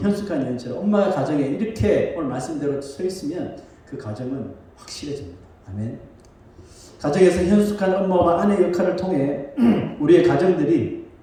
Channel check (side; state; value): both; identical; correlation 1.00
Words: 여인처럼 엄마가 가정에 이렇게 오늘 말씀대로 서 있으면 그 가정은 확실해집니다. 아멘. 가정에서 현숙한 엄마와 아내 역할을 통해 우리의 가정들이